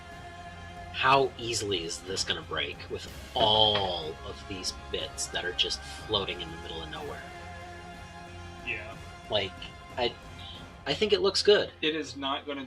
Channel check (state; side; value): identical; both; correlation 1.00